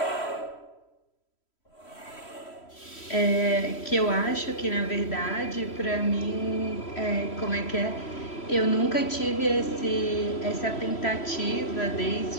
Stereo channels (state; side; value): late; right; 3.0 ms